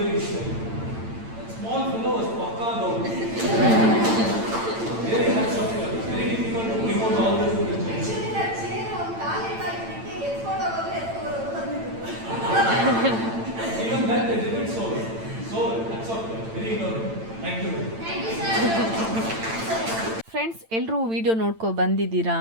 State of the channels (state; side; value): late; left; 8.9 ms